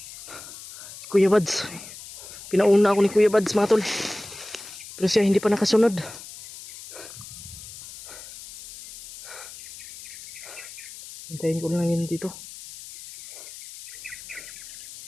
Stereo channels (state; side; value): noise; left; hiss, 15 dB below the sound